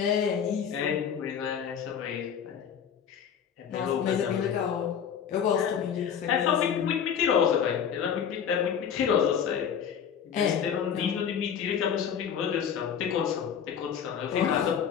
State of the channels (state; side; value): quieter; right; 7.9 dB